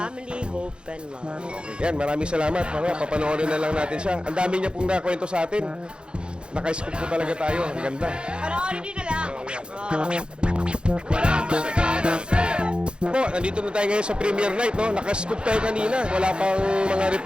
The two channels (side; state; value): left; late; 0.053 ms